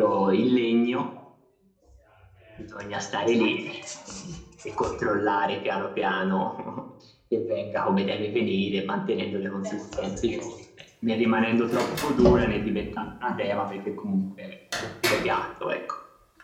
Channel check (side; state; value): both; identical; correlation 1.00